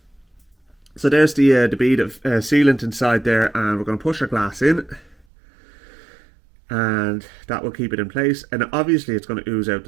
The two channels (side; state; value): left; drops out; at 5.2 s